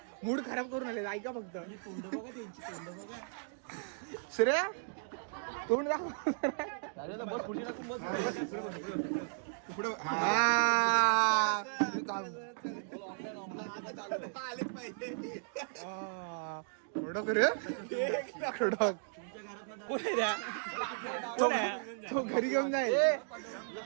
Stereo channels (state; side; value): silent; left; digital silence